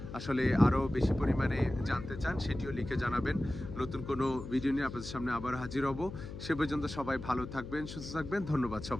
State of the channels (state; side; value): noise; left; hum, 10 dB below the sound